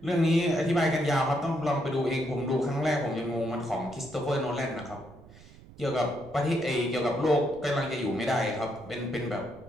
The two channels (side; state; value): right; noise; rumble, 21 dB below the sound